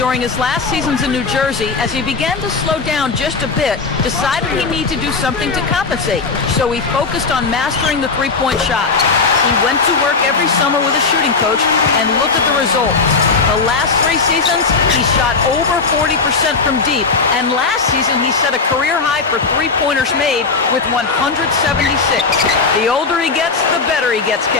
his last seasons in New Jersey, as he began to slow down just a bit, decided he needed to do something to compensate. So he focused on mastering the three-point shot. He went to work every summer with a shooting coach, and look at the results. The last 3 seasons, he shot over 40% from deep, and last season he set a career high for three-pointers made with 176. The older he gets, the better he gets,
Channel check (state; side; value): quieter; right; 4.4 dB